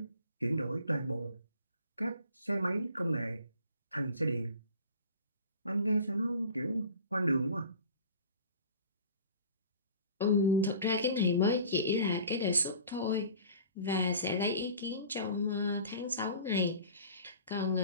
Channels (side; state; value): both; inverted; correlation -0.43